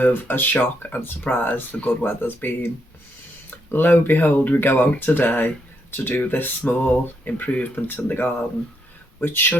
a shock and surprise the good weather's been. Lo and behold, we go out today to do this small improvement in the garden, which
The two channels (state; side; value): normal; both; correlation 0.77